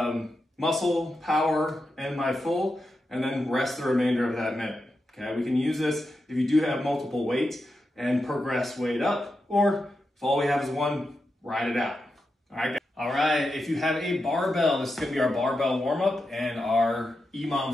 muscle, power, and my full, and then rest the remainder of that minute. Okay, we can use this if you do have multiple weights and progress weight up, or if all we have is one, ride it out. All right, if you have a barbell, this is gonna be our barbell warm-up and our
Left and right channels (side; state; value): both; normal; correlation 0.88